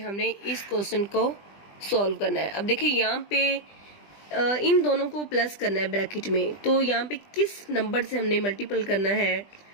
इस क्वेश्चन को सॉल्व करना है। अब देखिए यहाँ पे इन दोनों को प्लस करना है ब्रैकेट में, तो यहाँ पे किस नंबर से हमने मल्टीपल करना है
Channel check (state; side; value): late; right; 20 ms